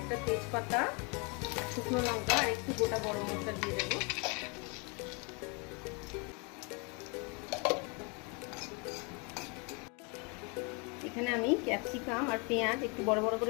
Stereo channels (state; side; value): quieter; right; 32.4 dB